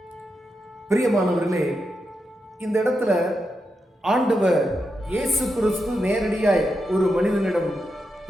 பிரியமானவர்களே, இந்த இடத்துல ஆண்டவர் இயேசு கிறிஸ்து நேரடியாய் ஒரு மனிதனிடம்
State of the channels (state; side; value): normal; both; correlation 0.86